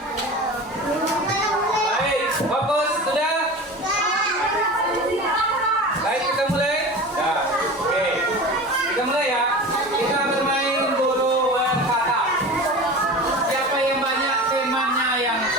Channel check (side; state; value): both; normal; correlation 0.33